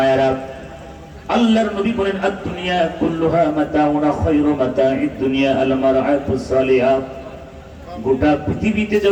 আল্লাহর নবী বলেন আদ-দুনিয়া কুল্লুহা মাতাউন খায়রু মাতাইদ দুনিয়া আল মারআতুস সালিহা। গোটা পৃথিবীতে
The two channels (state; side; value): identical; both; correlation 1.00